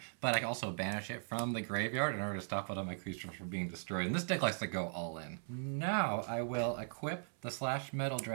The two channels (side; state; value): left; silent; 52 dB below the other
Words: but I can also banish it from the graveyard in order to stop one of my creatures from being destroyed. And this deck likes to go all in. Now I will equip the Slash Metal